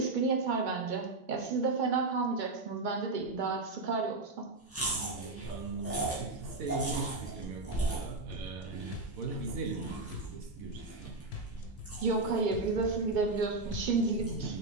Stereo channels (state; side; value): quieter; left; 3.3 dB